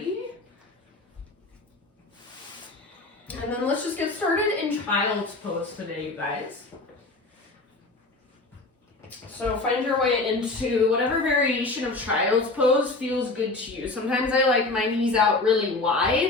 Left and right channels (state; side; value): quieter; right; 3.3 dB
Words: And then let's just get started in child's pose today, you guys. So find your way into whatever variation of child's pose feels good to you. Sometimes I like my knees out really